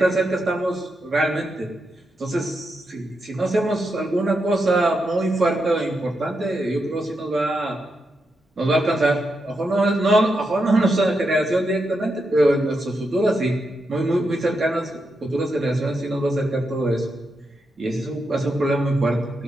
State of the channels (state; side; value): normal; both; correlation 0.85